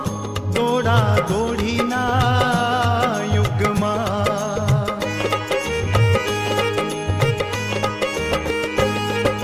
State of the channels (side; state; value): both; identical; correlation 1.00